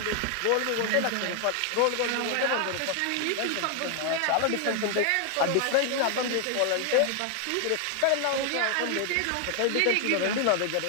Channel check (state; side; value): different; both; correlation 0.00